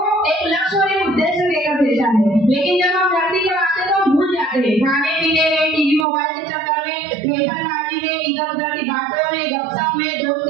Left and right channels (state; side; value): drops out; left; at 6.1 s